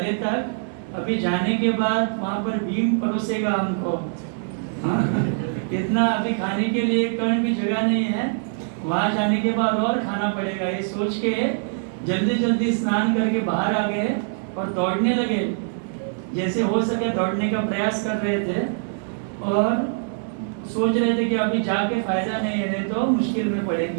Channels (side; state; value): left; silent; digital silence